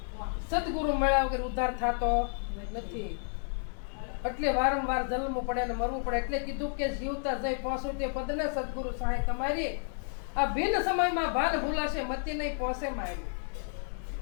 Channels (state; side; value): silent; right; digital silence